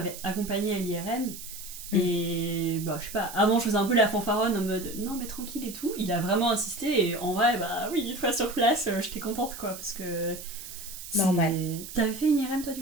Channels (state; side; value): noise; right; hiss, 12 dB below the sound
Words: accompagné à l'IRM. Et je sais pas, avant je faisais un peu la fanfaronne en mode non mais tranquille et tout, il a vraiment insisté et en vrai oui, une fois sur place j'étais contente quoi parce que normal. T'avais fait une IRM toi du